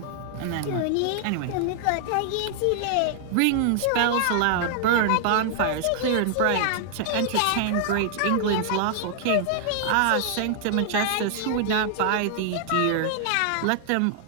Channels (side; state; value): both; different; correlation 0.00